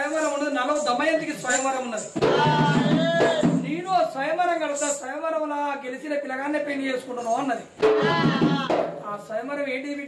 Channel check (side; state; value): both; identical; correlation 1.00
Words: ఉన్నది, నలవ దమయంతికి స్వయంవరం ఉన్నది, నేను స్వయంవరం కడతా, స్వయంవరంలా గెలిచిన పిల్లగానే పెళ్లి చేసుకుంటున్నావు అన్నది. ఆ స్వయంవరం ఏంటి